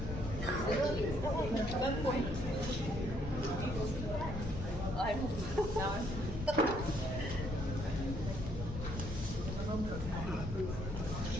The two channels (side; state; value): left; noise; rumble, 6 dB below the sound